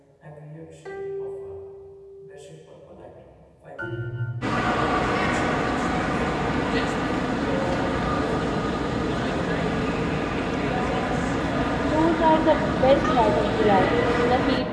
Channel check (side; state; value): both; identical; correlation 1.00